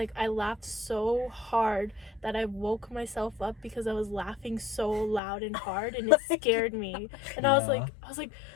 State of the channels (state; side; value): drops out; right; at 5.2 s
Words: I laughed so hard that I woke myself up because I was laughing so loud and hard, and it scared me. And I was like,